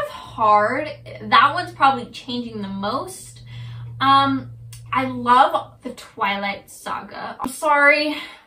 of hard. That one's probably changing the most. I love the Twilight Saga. I'm sorry,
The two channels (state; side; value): identical; both; correlation 1.00